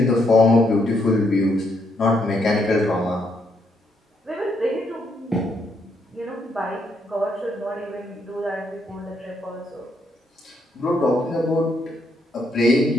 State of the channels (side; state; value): both; normal; correlation 0.75